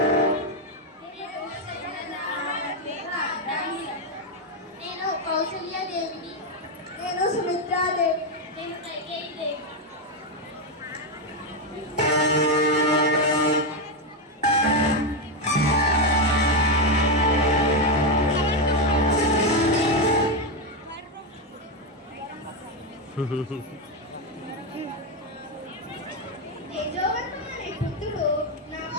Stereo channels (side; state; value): both; normal; correlation 0.07